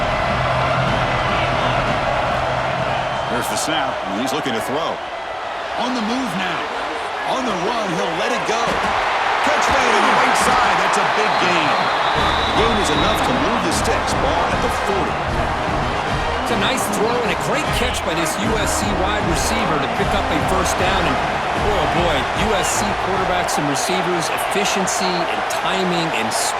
There's the snap, and he's looking to throw. On the move now. On the run, he'll let it go. Catch made on the right side. That's a big gain. The gain is enough to move the sticks. Ball at the 40. It's a nice throw and a great catch by this USC wide receiver to pick up a first down. And, oh boy, USC quarterbacks and receivers, efficiency and timing and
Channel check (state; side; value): identical; both; correlation 1.00